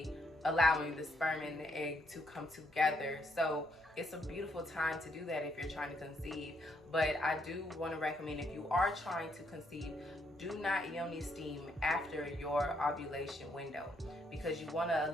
allowing the sperm and the egg to come together. So it's a beautiful time to do that if you're trying to conceive. But I do want to recommend, if you are trying to conceive, do not yoni steam after your ovulation window, because you want to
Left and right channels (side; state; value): both; normal; correlation 0.74